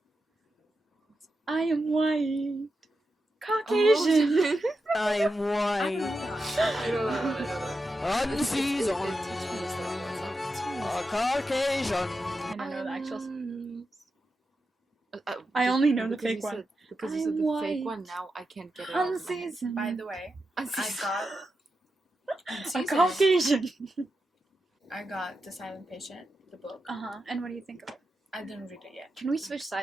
I am white. Caucasian. I am white, unseasoned, a Caucasian. I don't know the actual... I I only know the because you fake one. said- Because you said I'm the white. fake one, now I can't get it out of my head. Unseasoned. By the way, I got... A Caucasian. I got The Silent Patient, the book. Uh-huh. And what do you think of it? I didn't read it yet. Can we switch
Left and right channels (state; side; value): normal; both; correlation 0.89